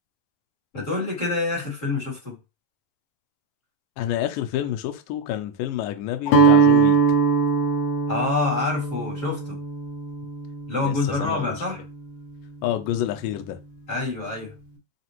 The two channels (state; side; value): late; right; 11 ms